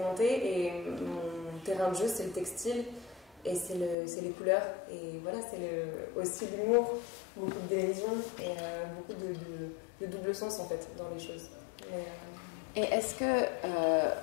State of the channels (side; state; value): right; drops out; at 4.0 s